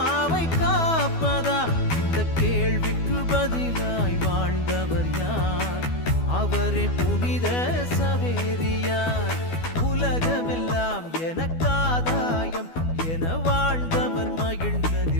காப்பதா? இந்த கேள்விக்கு பதிலாய் வாழ்ந்தவர் யார்? அவரே புனித சவேரியார். உலகமெல்லாம் எனக்காதாயம் என வாழ்ந்த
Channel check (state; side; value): late; right; 12 ms